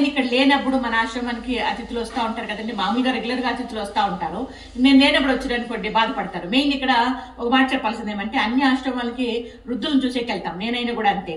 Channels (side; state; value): both; identical; correlation 1.00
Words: ఇక్కడ లేనప్పుడు మన ఆశ్రమానికి అతిథులు వస్తూ ఉంటారు కదండి. మామూలుగా రెగ్యులర్గా అతిథులు వస్తూ ఉంటారు. నేను లేనప్పుడు వచ్చారనుకోండి బాధపడతారు. మెయిన్ ఇక్కడ ఒక మాట చెప్పాల్సింది ఏమంటే, అన్ని ఆశ్రమాలకి వృద్ధులను చూసేకి వెళ్తాం, నేనైనా కూడా అంతే.